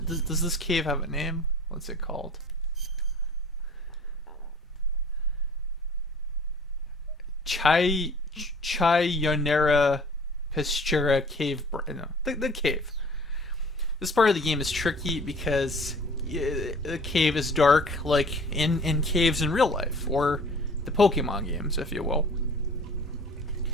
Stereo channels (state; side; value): normal; both; correlation 0.48